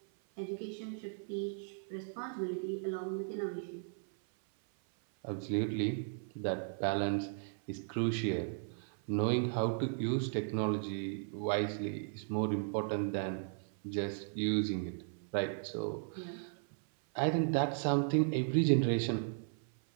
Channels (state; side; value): silent; left; 54 dB below the other